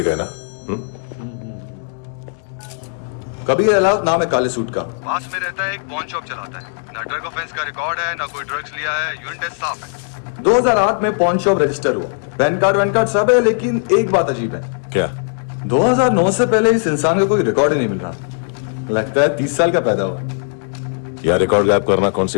गए ना? कबीर अलाउद्दीन नाम है काले सूट का। पास में रहता है, एक पॉन शॉप चलाता है। ना ड्रग ऑफेंस का रिकॉर्ड है, ना कोई ड्रग्स लिया है। यूरिन टेस्ट साफ है। 2008 में पॉन शॉप रजिस्टर हुआ, पैन कार्ड सब है, लेकिन एक बात अजीब है। क्या? 2009 से पहले इस इंसान का कोई रिकॉर्ड ही नहीं मिल रहा। लगता है 30 साल का पैदा हुआ। यह रिकॉर्ड गायब करना कौन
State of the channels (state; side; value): silent; right; 65 dB below the other